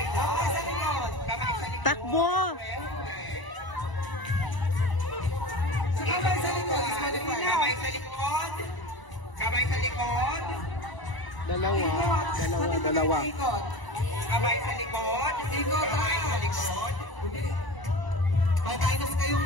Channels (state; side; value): late; right; 1.0 ms